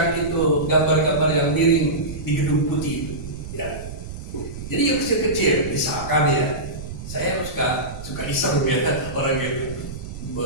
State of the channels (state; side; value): noise; right; rumble, 10 dB below the sound